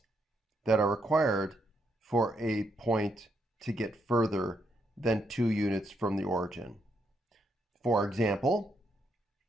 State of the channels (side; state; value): both; normal; correlation 0.78